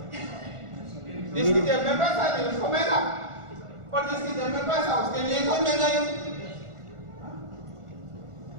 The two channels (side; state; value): left; late; 1.4 ms